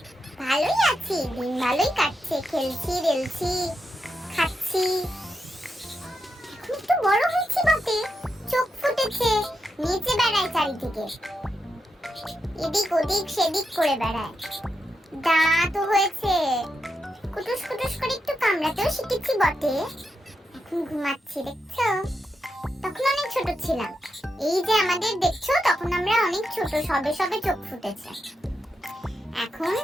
ভালোই আছি, দিন ভালোই কাটছে, খেলছি রেলছি খাচ্ছি। এখন একটু বড় হয়েছি বটে, চোখ ফুটেছে, নিচে বেড়ায় চারিদিকে, এদিক ওদিক সেদিক করে বেড়ায়। দাঁত হয়েছে, কুটুস কুটুস করে একটু কামড়াতেও শিখেছি বটে। এখন ঘুমাচ্ছি, দেখছো? তখন অনেক ছোট ছিলাম। এই যে আমাদের দেখছো, তখন আমরা অনেক ছোট, সবে সবে চোখ ফুটেছে। এখন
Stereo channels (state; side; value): normal; both; correlation 0.86